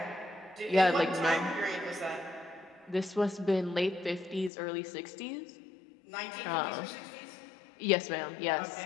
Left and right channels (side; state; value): right; drops out; at 4.5 s